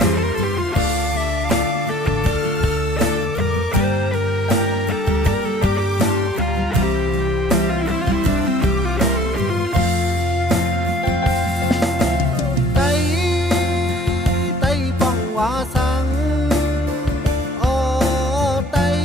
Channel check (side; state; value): both; normal; correlation 0.55